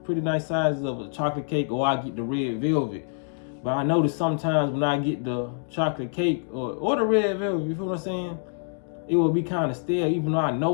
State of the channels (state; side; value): silent; right; digital silence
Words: pretty nice sizes of a chocolate cake, or I get the red velvet. But I noticed sometimes when I get the chocolate cake or the red velvet, you feel what I'm saying? It will be kind of stale, even though I